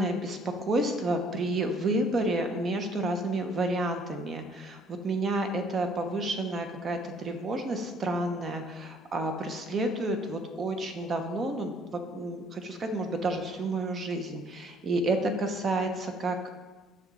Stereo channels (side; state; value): both; normal; correlation 0.61